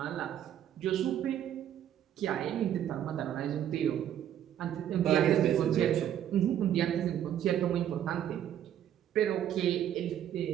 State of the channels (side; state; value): left; quieter; 10.5 dB